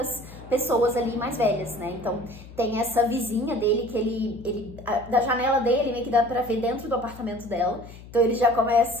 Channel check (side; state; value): left; noise; hum, 17 dB below the sound